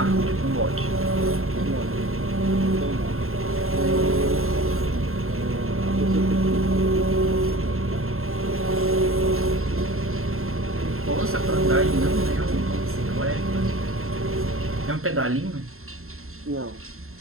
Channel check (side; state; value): left; late; 0.62 ms